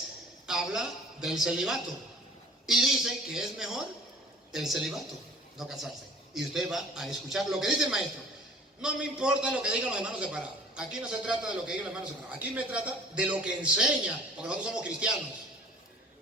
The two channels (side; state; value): both; normal; correlation 0.48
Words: habla del celibato. Y dice que es mejor el celibato, no casarse. Y usted va a escuchar lo que dice el maestro. No me importa lo que digan los hermanos separados. Aquí no se trata de lo que digan los hermanos separados. Aquí me trata de lo que enseña, porque nosotros somos cristianos.